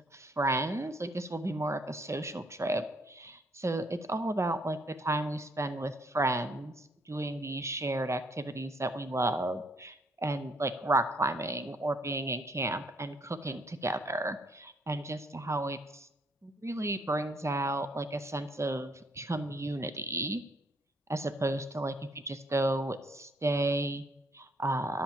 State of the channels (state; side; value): normal; both; correlation 0.67